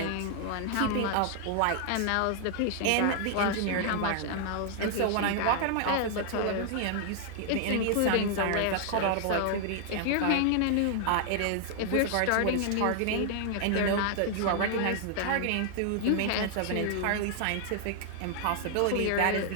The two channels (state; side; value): different; both; correlation 0.00